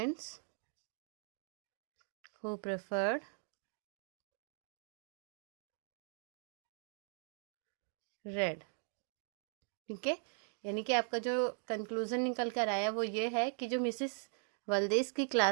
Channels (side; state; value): left; silent; 51 dB below the other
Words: who preferred red। ठीक है, यानी कि आपका जो कंक्लूजन निकल कर आया वो ये है कि जो मिसेस वल्देस की